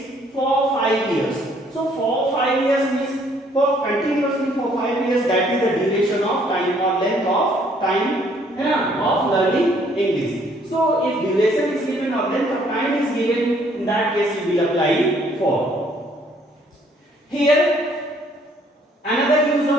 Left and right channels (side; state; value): both; normal; correlation 0.63